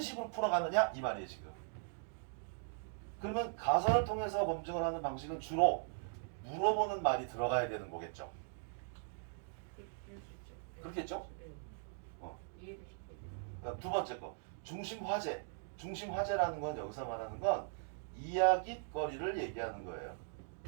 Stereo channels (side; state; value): left; silent; digital silence